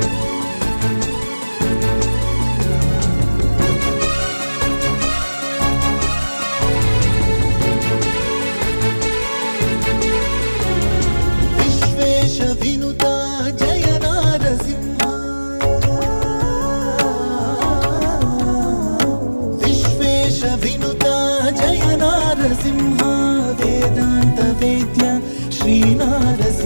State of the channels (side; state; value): both; inverted; correlation -1.00